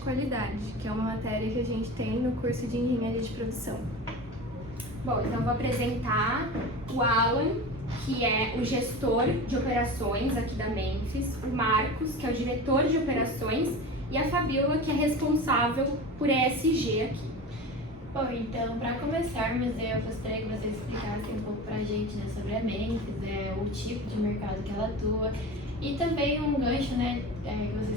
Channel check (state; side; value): normal; both; correlation 0.31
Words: que é uma matéria que a gente tem no curso de engenharia de produção. Bom, então eu vou apresentar o Alan, que é o gestor de operações aqui da Memphis, o Marcos, que é o diretor de operações, e a Fabiola, que é responsável por ESG aqui. Bom, então, para começarmos, eu gostaria que vocês explicassem um pouco para a gente, né, sobre a Memphis, o tipo de mercado que ela atua, e também um gancho, né, que